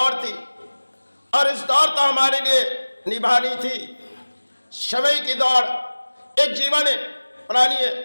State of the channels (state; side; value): inverted; both; correlation -1.00